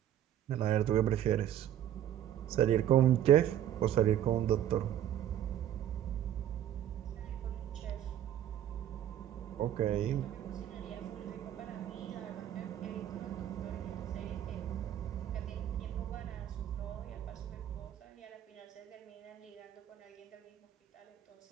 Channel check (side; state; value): left; quieter; 11.1 dB